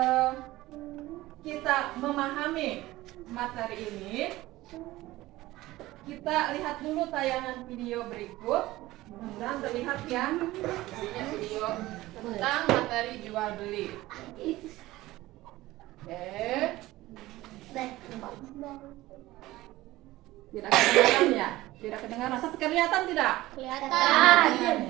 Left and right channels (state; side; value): quieter; left; 17.6 dB